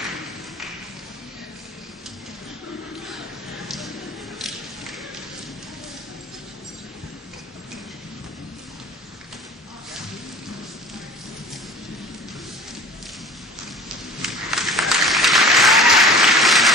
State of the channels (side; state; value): both; normal; correlation 0.42